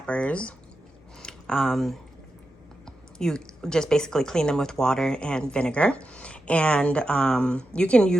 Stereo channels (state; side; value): normal; both; correlation 0.89